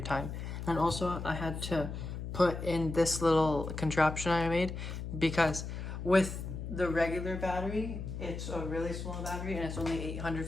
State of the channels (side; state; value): left; noise; hum, 6 dB below the sound